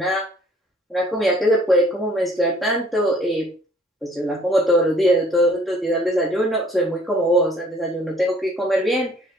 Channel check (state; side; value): normal; both; correlation 0.57